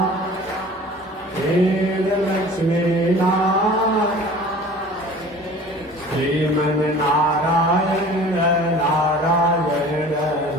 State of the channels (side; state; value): both; normal; correlation 0.44